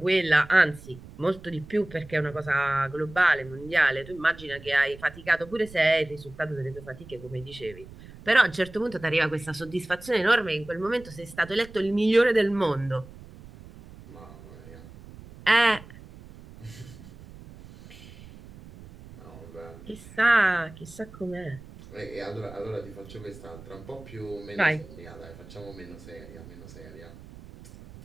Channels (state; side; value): noise; right; rumble, 18 dB below the sound